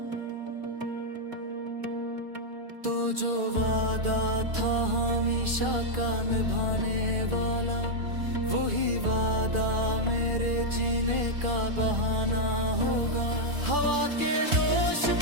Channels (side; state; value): left; late; 2.4 ms